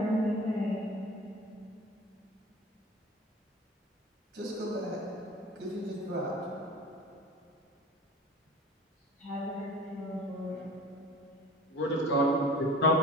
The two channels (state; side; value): normal; both; correlation 0.40